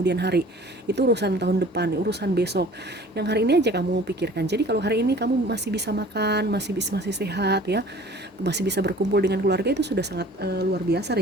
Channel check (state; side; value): normal; both; correlation 0.48